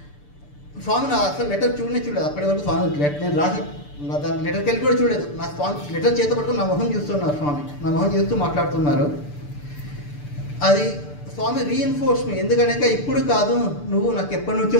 స్వామి నా అసలు లెటర్ చూడలేదు. అప్పటి వరకు స్వామి నేను రాసిన దాని లెటర్కి వెళ్ళి కూడా చూడలేదు. నా స్వామి లెటర్ చేత పట్టుకుని నా మొహం చూస్తున్నారు. స్వామి నా మొహం చూస్తూ మాట్లాడుతున్నారు. అది స్వామి రీఇన్ఫోర్స్ మీ. ఎందుకంటే ఇప్పుడు కాదు, నువ్వు నాకు ఎప్పటి నుంచో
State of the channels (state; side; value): late; right; 6.8 ms